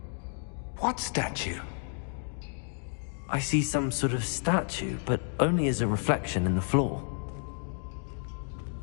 What statue? I see some sort of statue, but only as a reflection in the floor.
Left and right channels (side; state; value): right; silent; 55 dB below the other